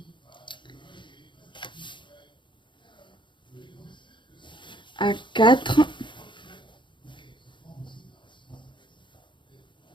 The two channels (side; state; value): right; late; 0.23 ms